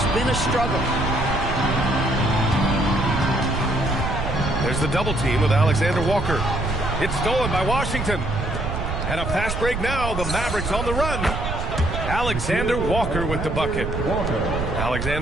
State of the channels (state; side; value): noise; right; rumble, 4 dB below the sound